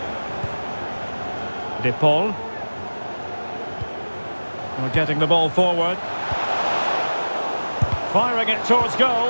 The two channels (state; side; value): inverted; both; correlation -1.00